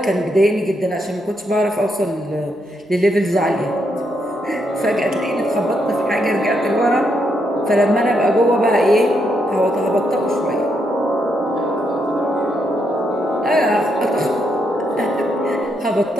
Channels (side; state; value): both; normal; correlation 0.78